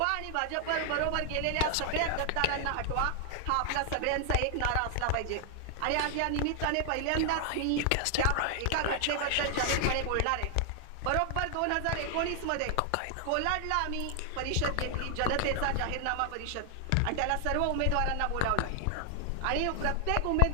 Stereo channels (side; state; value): both; different; correlation 0.00